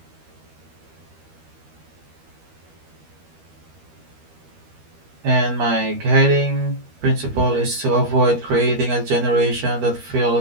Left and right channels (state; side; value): late; left; 13 ms